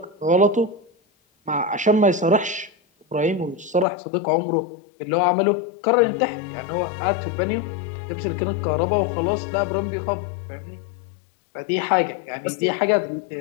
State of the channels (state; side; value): drops out; right; at 3.9 s